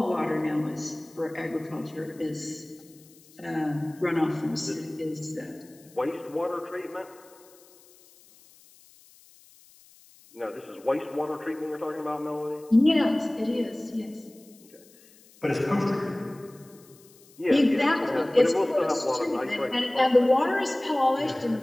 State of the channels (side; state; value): left; noise; hiss, 26 dB below the sound